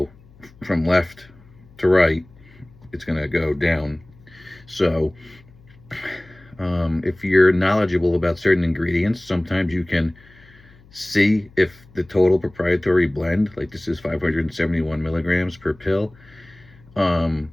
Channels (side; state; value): left; noise; hum, 26 dB below the sound